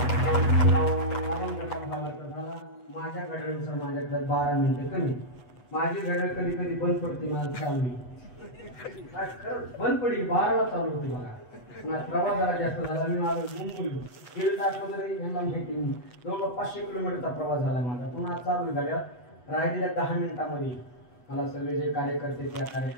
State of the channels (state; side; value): late; right; 8.1 ms